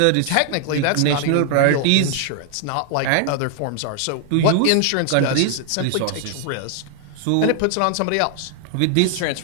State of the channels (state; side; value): different; both; correlation 0.00